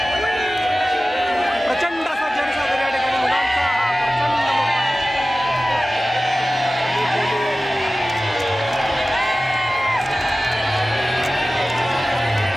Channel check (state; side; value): normal; both; correlation 0.96